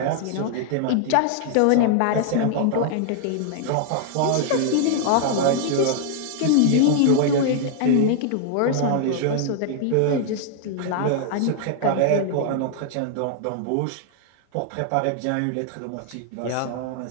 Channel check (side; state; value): both; different; correlation 0.00